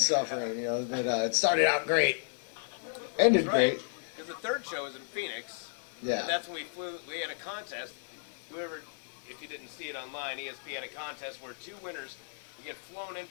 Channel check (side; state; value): right; silent; digital silence